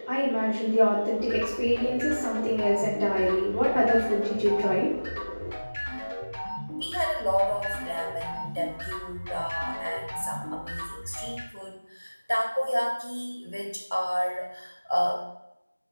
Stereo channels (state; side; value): inverted; both; correlation -1.00